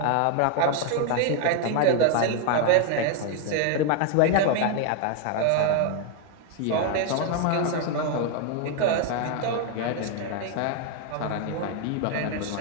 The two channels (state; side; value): different; both; correlation 0.00